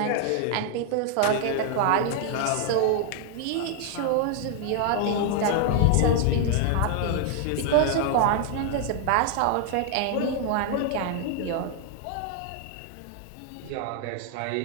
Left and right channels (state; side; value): different; both; correlation 0.00